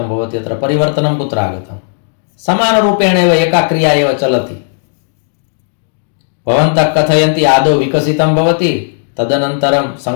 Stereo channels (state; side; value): silent; right; digital silence